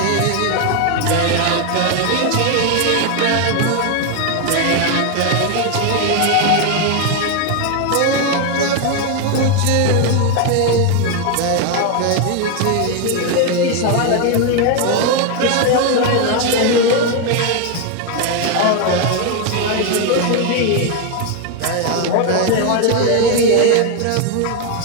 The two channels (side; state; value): both; different; correlation 0.01